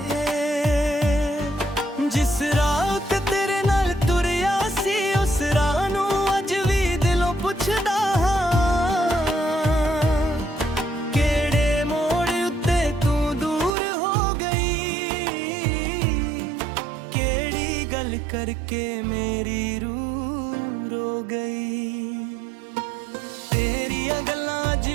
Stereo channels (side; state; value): left; drops out; at 13.7 s